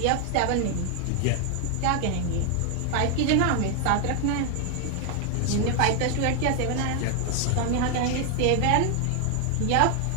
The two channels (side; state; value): both; different; correlation 0.00